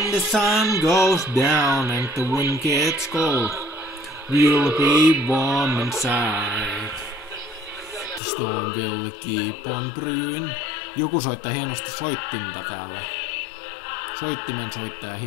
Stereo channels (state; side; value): drops out; right; at 8.2 s